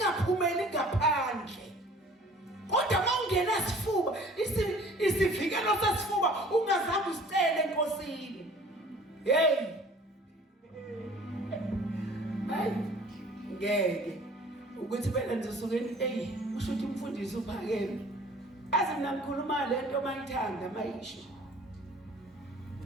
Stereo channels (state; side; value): normal; both; correlation 0.50